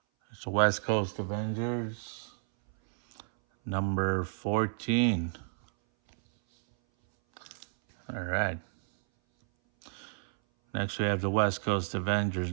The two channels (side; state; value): left; silent; 57 dB below the other